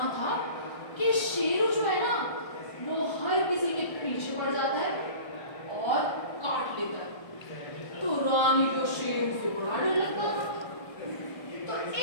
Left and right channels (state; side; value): late; right; 1.3 ms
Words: था कि शेरू जो है ना, वो हर किसी के पीछे पड़ जाता है और काट लेता है। तो रानी को शेरू से बड़ा डर लगता था। तो